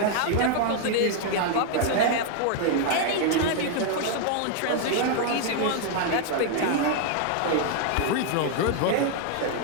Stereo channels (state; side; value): different; both; correlation 0.00